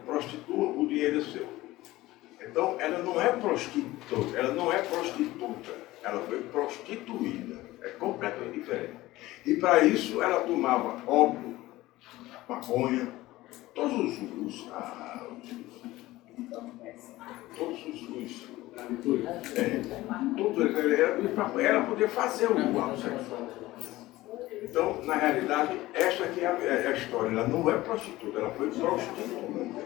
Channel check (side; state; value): right; quieter; 17.7 dB